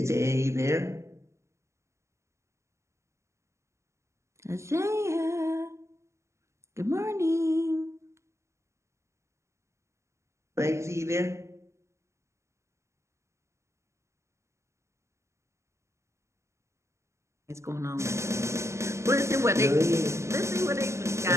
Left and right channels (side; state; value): left; late; 0.14 ms